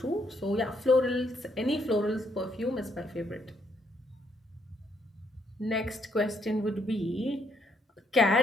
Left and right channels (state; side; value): normal; both; correlation 0.72